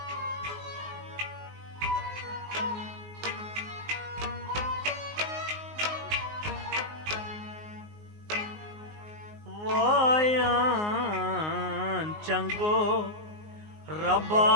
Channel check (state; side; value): late; left; 19 ms